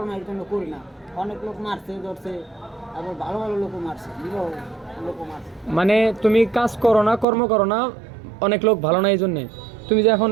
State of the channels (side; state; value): left; drops out; at 7.2 s